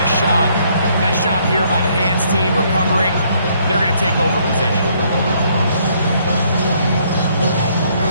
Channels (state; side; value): inverted; both; correlation -0.67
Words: a shot. Nice job here by the hands team recovering. They're going to take over possession.